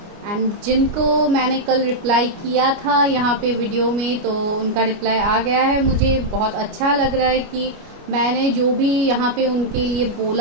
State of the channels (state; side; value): late; left; 29 ms